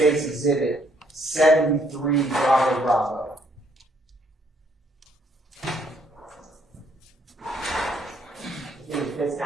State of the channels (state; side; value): normal; both; correlation 0.68